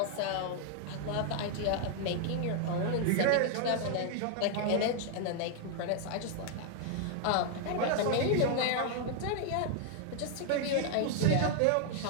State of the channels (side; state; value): both; different; correlation 0.00